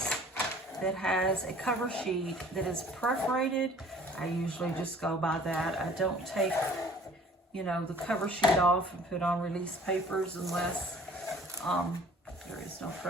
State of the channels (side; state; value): both; normal; correlation 0.51